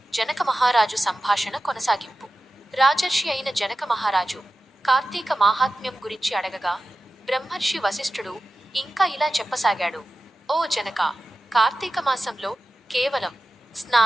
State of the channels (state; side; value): normal; both; correlation 0.94